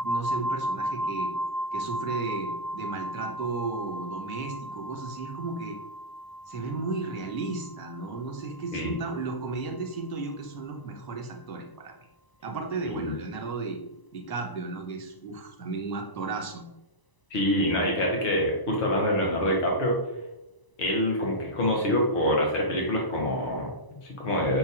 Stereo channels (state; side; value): late; right; 1.0 ms